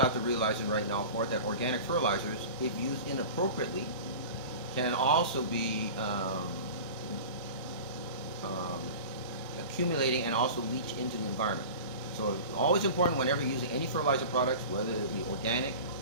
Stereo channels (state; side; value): inverted; both; correlation -0.35